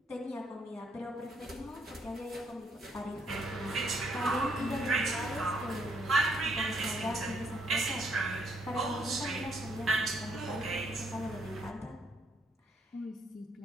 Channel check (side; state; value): both; normal; correlation 0.71